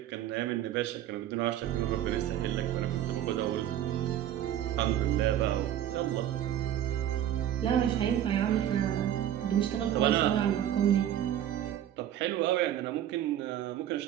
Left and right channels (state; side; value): quieter; left; 11.3 dB